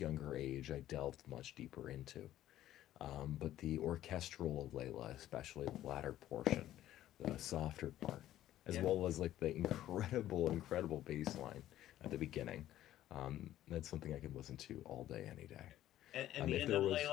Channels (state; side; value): quieter; right; 13.2 dB